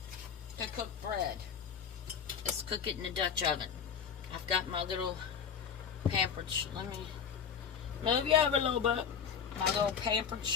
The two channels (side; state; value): right; quieter; 7.2 dB